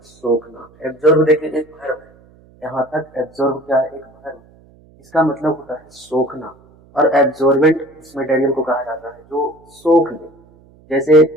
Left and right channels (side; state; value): right; noise; hum, 28 dB below the sound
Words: सोखना। एब्जॉर्ब देखिए एक वर्ब है, यहाँ तक एब्जॉर्ब क्या है, एक वर्ब। इसका मतलब होता है सोखना। और एब्जॉर्बेंट उस मटेरियल को कहा जाता है जो सोख ले। जैसे